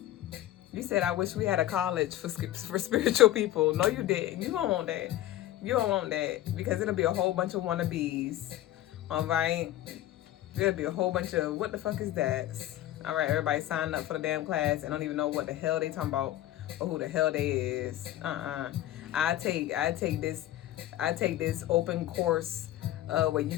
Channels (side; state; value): right; quieter; 14.1 dB